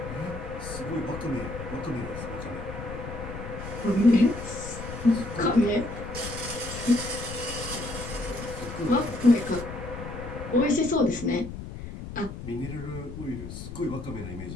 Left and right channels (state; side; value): noise; left; rumble, 9 dB below the sound